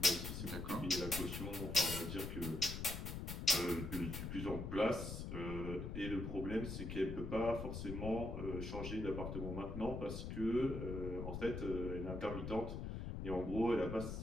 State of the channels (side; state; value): left; noise; rumble, 5 dB below the sound